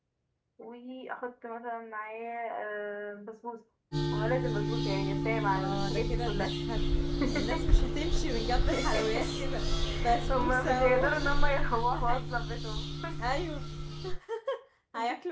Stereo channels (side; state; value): both; identical; correlation 1.00